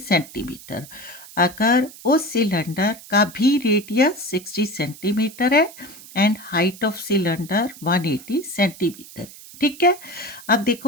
अगर उस सिलेंडर का भी रेडियस 60 सेंटीमीटर है and height of cylinder 180 centimetre है। ठीक है। अब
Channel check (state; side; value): noise; right; hiss, 18 dB below the sound